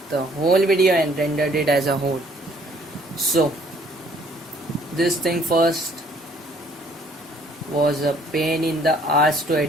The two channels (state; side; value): normal; both; correlation 0.61